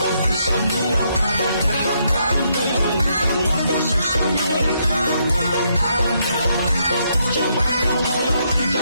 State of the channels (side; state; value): both; inverted; correlation -0.76